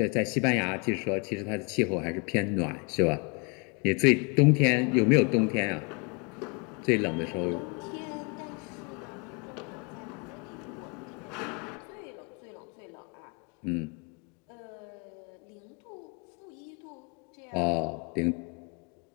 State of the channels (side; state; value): right; quieter; 32.4 dB